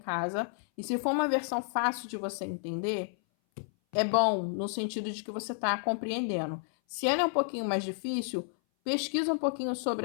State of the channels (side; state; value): right; silent; 57 dB below the other